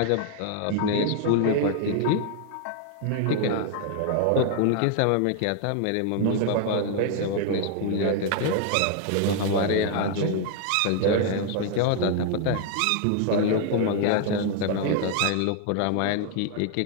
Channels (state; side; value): different; both; correlation 0.00